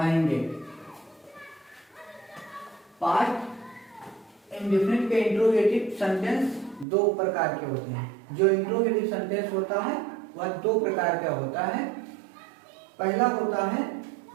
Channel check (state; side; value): drops out; left; at 6.9 s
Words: पास्ट इंडेफिनिट के इंट्रोगेटिव सेंटेंस दो प्रकार के होते हैं। जो इंट्रोगेटिव सेंटेंस होता है वह दो प्रकार का होता है। पहला होता है